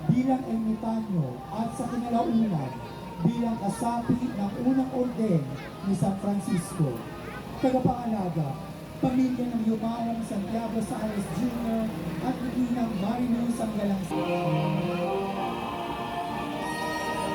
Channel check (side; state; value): both; identical; correlation 1.00